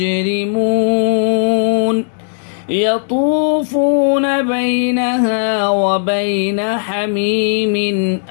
يطوفون بينها وبين حميم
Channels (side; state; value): right; silent; digital silence